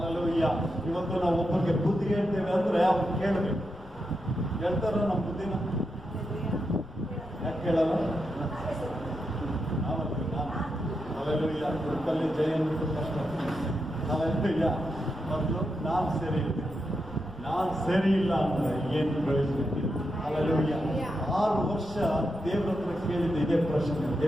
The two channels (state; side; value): noise; left; rumble, 21 dB below the sound